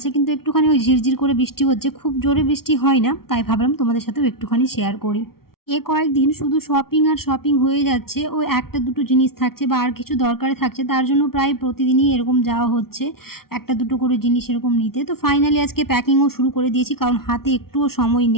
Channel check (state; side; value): late; right; 0.94 ms